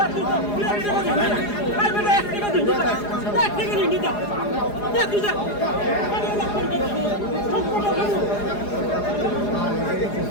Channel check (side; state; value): right; late; 4.9 ms